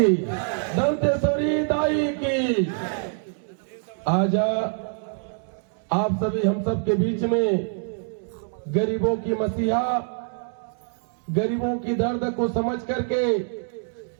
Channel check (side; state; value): left; silent; 62 dB below the other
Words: दंतेश्वरी दाई की। आज आप सभी हम सब के बीच में गरीबों की मसीहा, गरीबों की दर्द को समझ करके